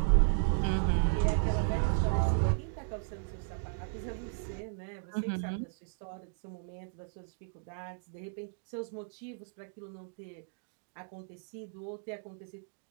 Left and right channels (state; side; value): silent; left; digital silence